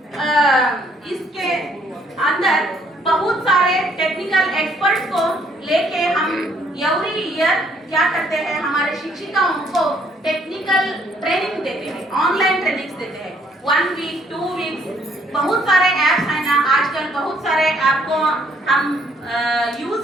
इसके अंदर बहुत सारे टेक्निकल एक्सपर्ट्स को लेके हम एवरी ईयर क्या करते हैं, हमारे शिक्षिकाओं को टेक्निकल ट्रेनिंग देते हैं, ऑनलाइन ट्रेनिंग देते हैं, 1 वीक 2 वीक्स। बहुत सारे ऐप्स हैं ना आजकल, बहुत सारे ऐप को हम यूज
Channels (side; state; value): both; normal; correlation 0.66